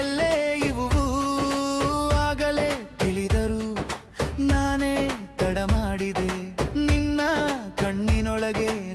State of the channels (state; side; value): identical; both; correlation 1.00